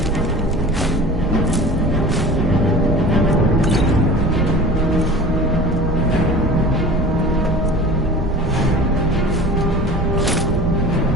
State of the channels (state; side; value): normal; both; correlation 0.39